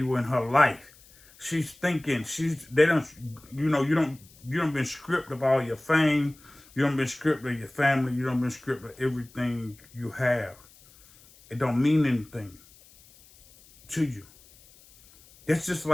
her life. She's thinking you don't been stripped of all your fame, you don't been stripped of your family, you don't been stripped of everything you have. It don't mean anything to you. It's just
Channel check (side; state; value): left; noise; hiss, 26 dB below the sound